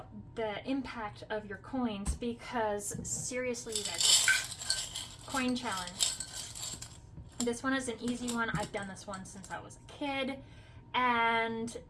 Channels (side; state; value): both; identical; correlation 1.00